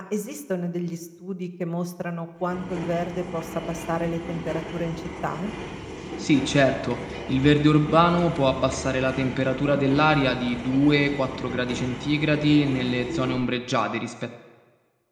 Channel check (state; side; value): identical; both; correlation 1.00